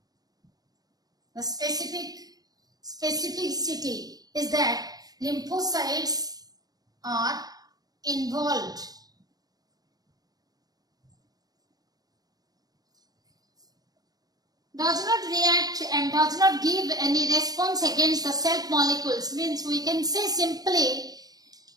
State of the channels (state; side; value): late; left; 0.19 ms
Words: The specificity is that lymphocytes are involved. Does not react and does not give any response against the self molecules, means we can say simply